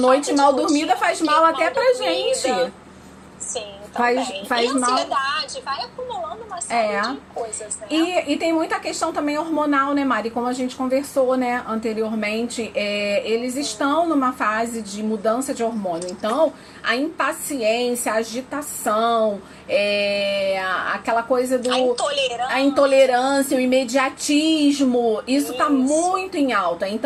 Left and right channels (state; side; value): identical; both; correlation 1.00